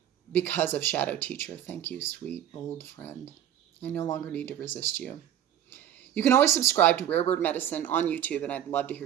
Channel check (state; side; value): quieter; left; 10.8 dB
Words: because of Shadow Teacher. Thank you, sweet old friend. I no longer need to resist you. You can always subscribe to Rare Bird Medicine on YouTube, and I'd love to